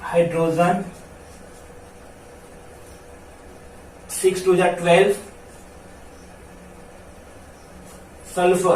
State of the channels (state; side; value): identical; both; correlation 1.00